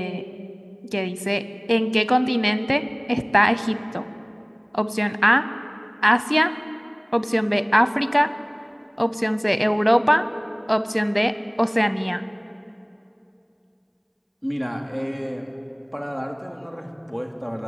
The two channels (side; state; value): both; identical; correlation 1.00